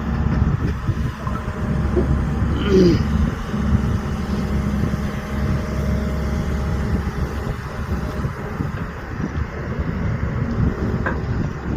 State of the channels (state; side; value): identical; both; correlation 1.00